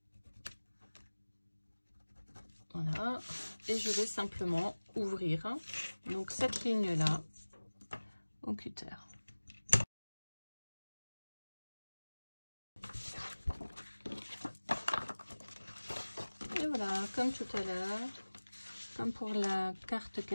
Voilà, et je vais simplement ouvrir donc cette ligne là au cutter. Et voilà, comme tout à l'heure, comme pour la carte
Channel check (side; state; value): both; inverted; correlation -1.00